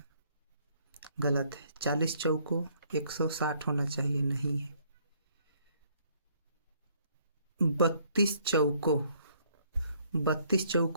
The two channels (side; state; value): both; inverted; correlation -0.65